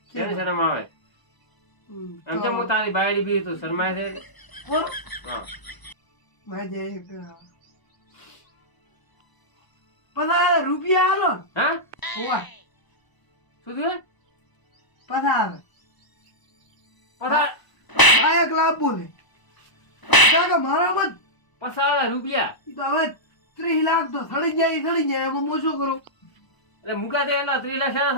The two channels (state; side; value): late; right; 1.0 ms